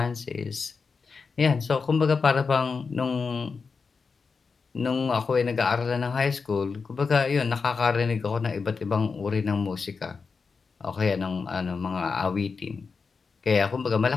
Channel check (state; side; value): quieter; right; 5.0 dB